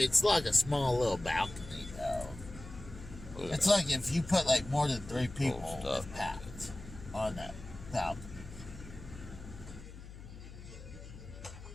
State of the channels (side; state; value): left; noise; hum, 14 dB below the sound